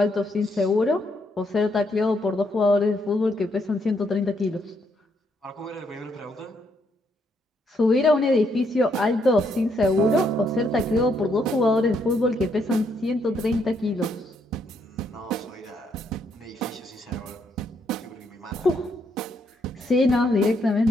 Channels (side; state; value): both; normal; correlation 0.74